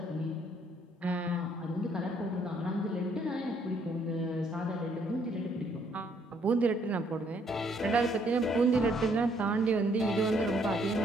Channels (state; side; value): normal; both; correlation 0.68